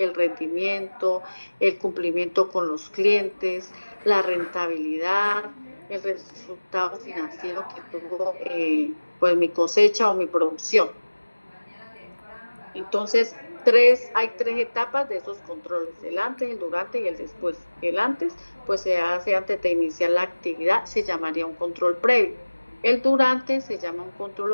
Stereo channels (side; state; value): both; inverted; correlation -1.00